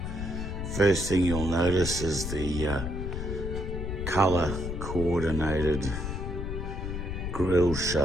First thing you'll notice is the color coordinated grille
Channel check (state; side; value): noise; left; rumble, 4 dB below the sound